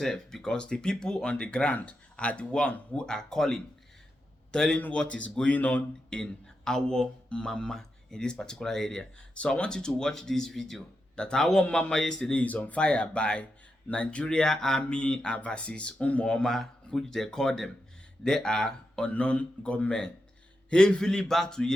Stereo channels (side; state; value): both; normal; correlation 0.87